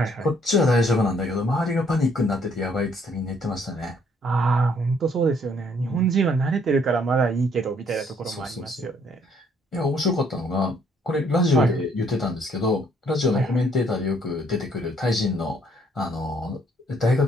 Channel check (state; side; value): normal; both; correlation 0.65